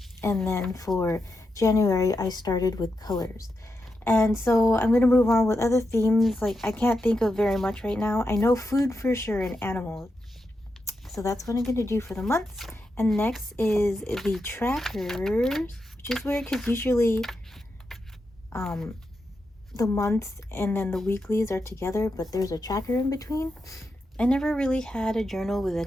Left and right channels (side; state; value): both; normal; correlation 0.86